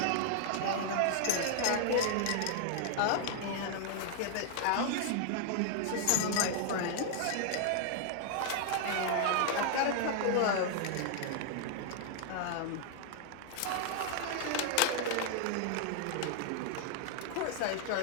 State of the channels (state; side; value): different; both; correlation 0.00